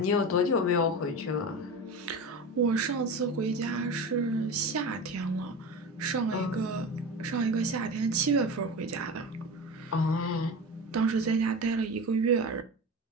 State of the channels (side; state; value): both; normal; correlation 0.28